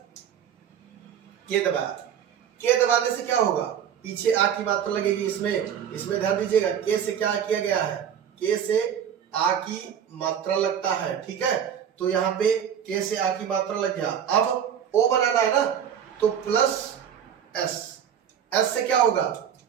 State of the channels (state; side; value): quieter; left; 8.8 dB